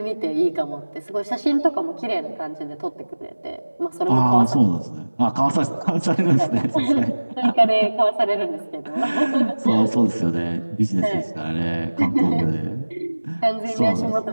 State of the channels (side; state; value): both; inverted; correlation -1.00